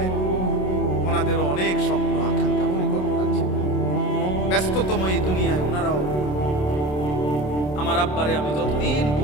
ওনাদেরও অনেক স্বপ্ন আকাঙ্ক্ষা পরিকল্পনা ছিল। ব্যস্ততম এই দুনিয়ায় ওনারাও, আমার আব্বারে আমি যতদিন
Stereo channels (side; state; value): right; late; 27 ms